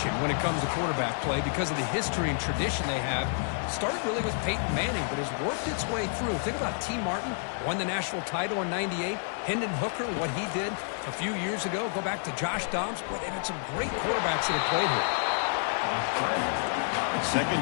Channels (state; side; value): silent; right; digital silence